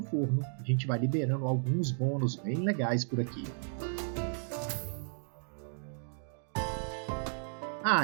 forno, a gente vai liberando alguns bônus bem legais por aqui.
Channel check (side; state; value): left; silent; digital silence